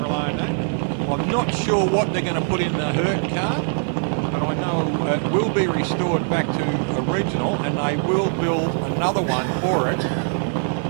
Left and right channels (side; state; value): left; silent; 64 dB below the other